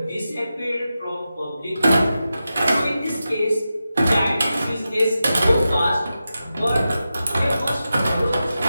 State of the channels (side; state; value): both; inverted; correlation -0.91